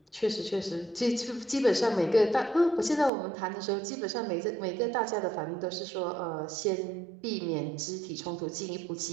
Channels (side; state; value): left; drops out; at 3.1 s